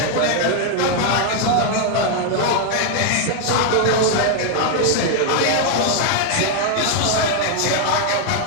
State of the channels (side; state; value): both; different; correlation 0.00